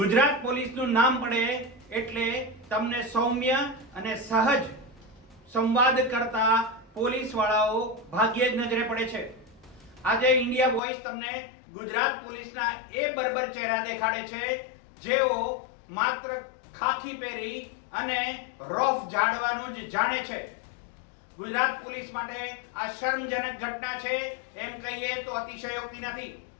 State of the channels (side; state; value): right; drops out; at 10.8 s